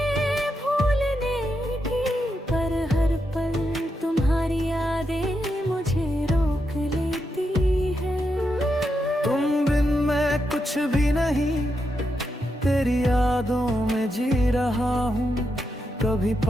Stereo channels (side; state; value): both; normal; correlation 0.84